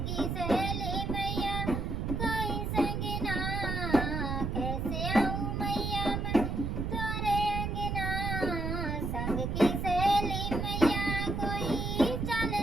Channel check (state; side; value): noise; right; rumble, 1 dB below the sound